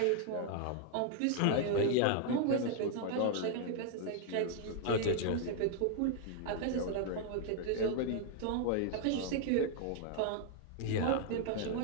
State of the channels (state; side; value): different; both; correlation 0.00